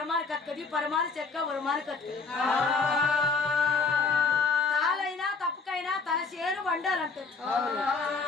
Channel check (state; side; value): quieter; right; 4.5 dB